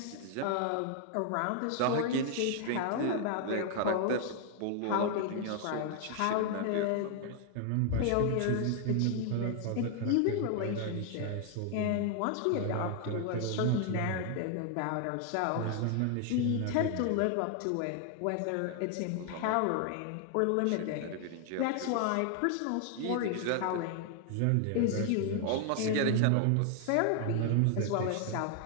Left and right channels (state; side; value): different; both; correlation 0.00